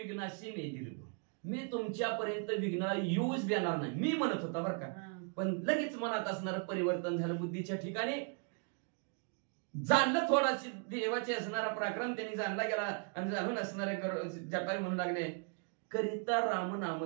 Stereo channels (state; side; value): quieter; left; 39.7 dB